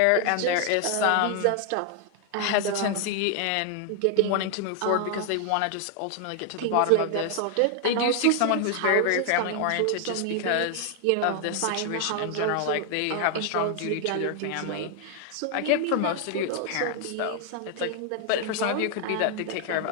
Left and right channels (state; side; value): different; both; correlation 0.00